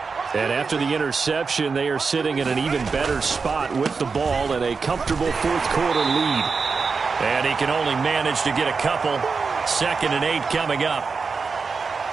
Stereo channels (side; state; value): left; quieter; 4.9 dB